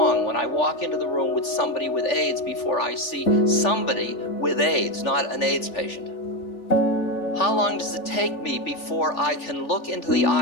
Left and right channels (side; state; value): right; late; 3.4 ms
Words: when I walk into the room with somebody with AIDS before I see somebody with AIDS, not an AIDS patient? How long does it take me before I can look into the